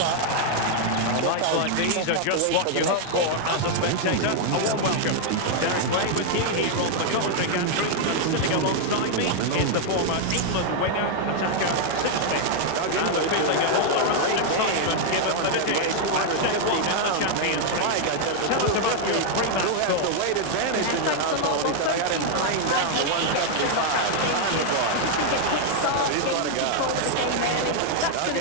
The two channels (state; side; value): different; both; correlation 0.00